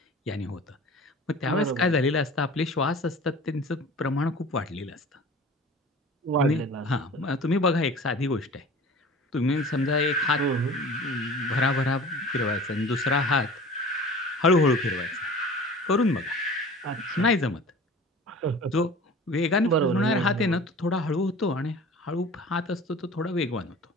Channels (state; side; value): normal; both; correlation 0.41